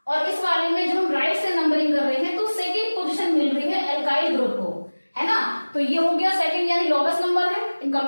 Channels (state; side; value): inverted; both; correlation -1.00